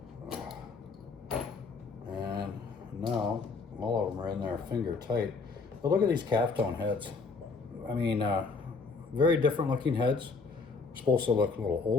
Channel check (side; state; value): right; quieter; 4.4 dB